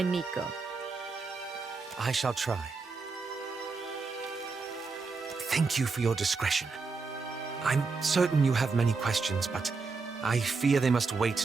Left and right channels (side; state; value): left; quieter; 4.4 dB